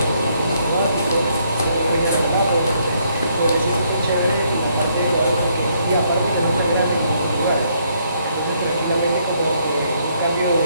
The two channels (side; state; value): both; inverted; correlation -0.71